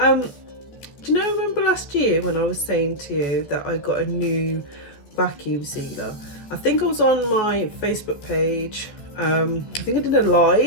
you know, remember last year when I was saying to you that I got a new vacuum sealer? I think I was on my Facebook page. I think I did a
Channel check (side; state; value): right; late; 14 ms